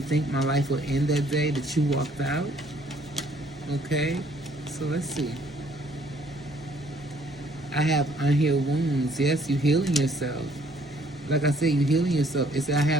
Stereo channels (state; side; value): normal; both; correlation 0.62